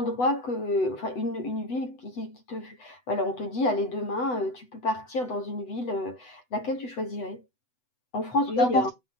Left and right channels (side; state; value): right; late; 8.0 ms